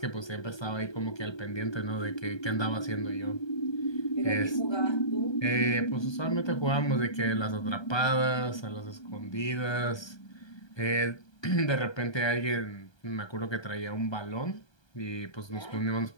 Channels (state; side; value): late; right; 1.3 ms